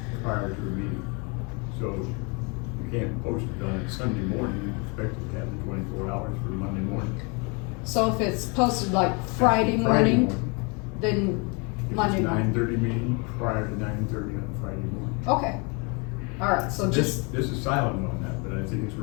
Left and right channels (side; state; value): right; quieter; 32.0 dB